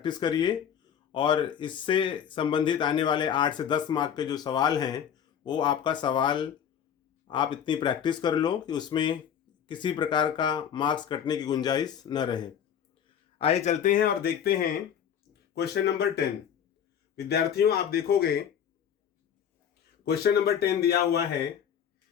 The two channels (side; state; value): right; quieter; 8.6 dB